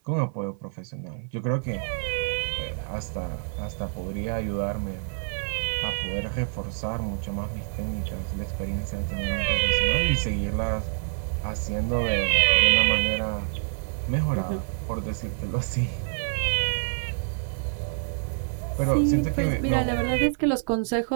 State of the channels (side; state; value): left; silent; 59 dB below the other